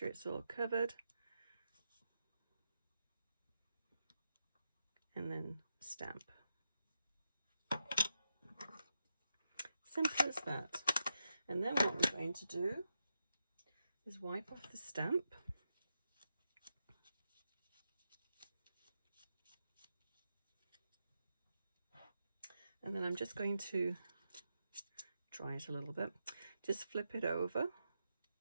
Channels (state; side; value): inverted; both; correlation -0.85